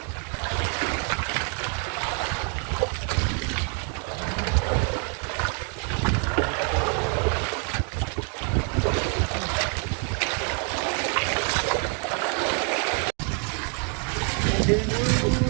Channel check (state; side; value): quieter; left; 37.3 dB